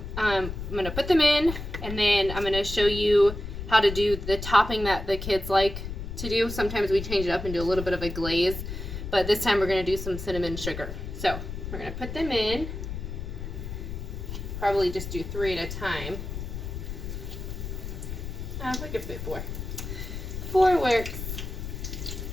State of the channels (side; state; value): left; noise; rumble, 7 dB below the sound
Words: I'm going to put them in, and then I'm going to show you how to do the topping that the kids like to do. Sometimes we change it up and do a little bit of a glaze, but this time we're going to do some cinnamon sugar. So we're going to put them in, probably just do 3 at a time. We could fit 4. 4 works.